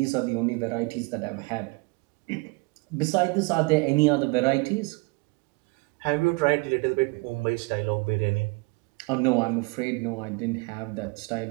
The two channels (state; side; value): quieter; left; 27.1 dB